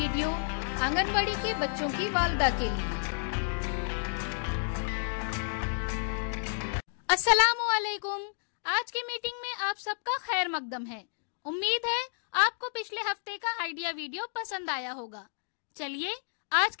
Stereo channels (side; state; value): right; silent; digital silence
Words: anganwadi के बच्चों की वालदा के लिए। अस्सलामु अलैकुम। आज की मीटिंग में आप सबका खैर मकदम है। उम्मीद है आपको पिछले हफ्ते का आइडिया वीडियो पसंद आया होगा। चलिए आज